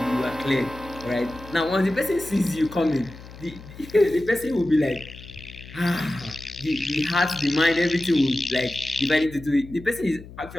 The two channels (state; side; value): noise; left; hum, 17 dB below the sound